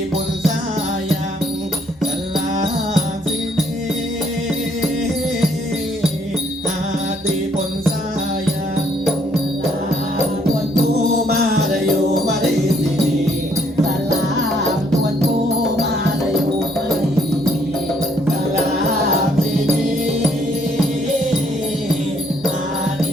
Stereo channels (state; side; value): normal; both; correlation 0.68